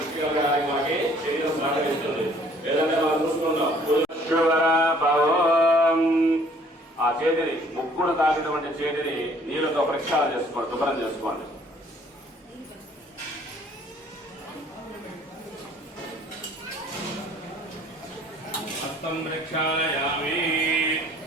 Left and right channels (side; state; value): both; normal; correlation 0.58